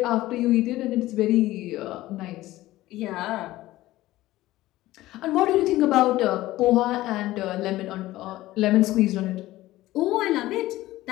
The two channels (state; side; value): quieter; right; 16.6 dB